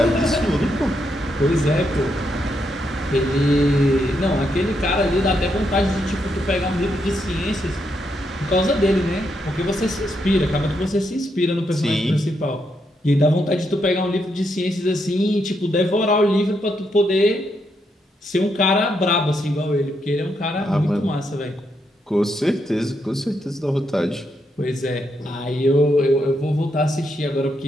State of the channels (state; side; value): normal; both; correlation 0.80